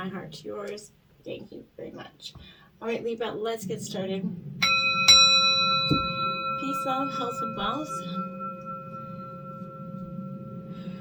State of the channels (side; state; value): both; identical; correlation 1.00